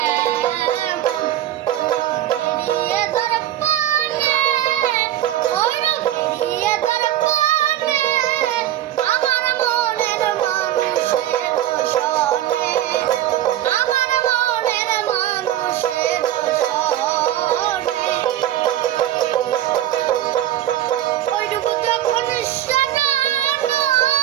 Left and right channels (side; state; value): left; quieter; 12.9 dB